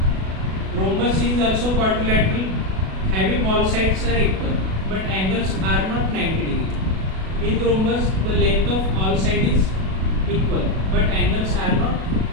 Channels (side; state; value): left; late; 37 ms